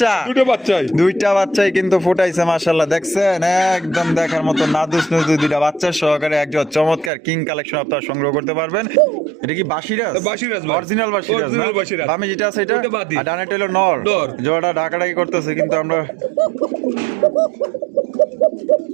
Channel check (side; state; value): left; drops out; at 7.1 s